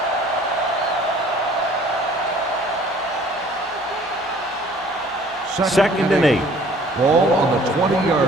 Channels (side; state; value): both; normal; correlation 0.54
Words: Second and 8. Ball on the